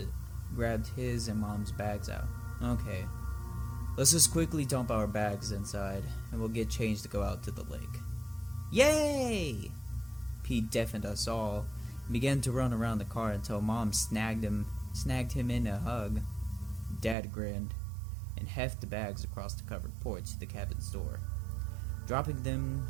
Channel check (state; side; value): drops out; left; at 17.2 s